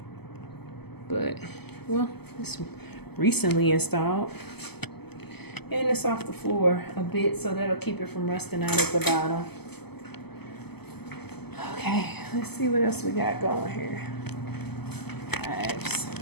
But, well, it's recently installed. And it's off the floor a bit, so that'll keep it from rusting out at the bottom. Okay, let's see what else we got going here. Pipes.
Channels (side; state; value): right; late; 0.97 ms